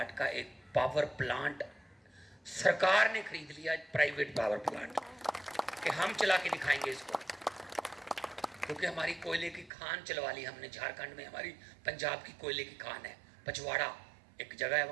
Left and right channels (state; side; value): drops out; left; at 9.7 s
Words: का एक पावर प्लांट सरकार ने खरीद लिया, प्राइवेट पावर प्लांट, कि हम चला के दिखाएंगे इसको। क्योंकि हमारी कोयले की खान चलवा ली हमने झारखंड में। हमारी पंजाब की कोयले की खान है, पचवाड़ा एक जगह है